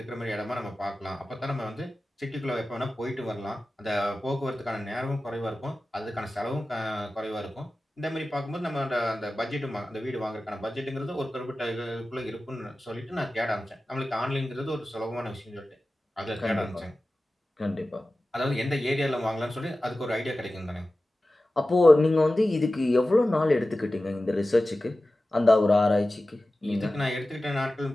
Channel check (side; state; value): both; normal; correlation 0.95